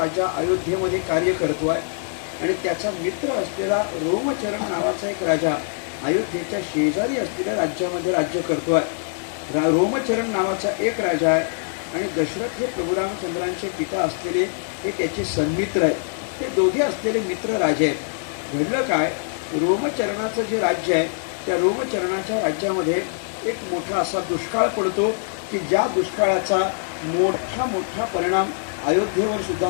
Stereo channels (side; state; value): right; silent; 63 dB below the other